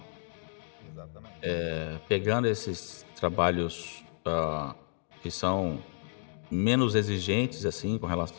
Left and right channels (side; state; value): right; silent; digital silence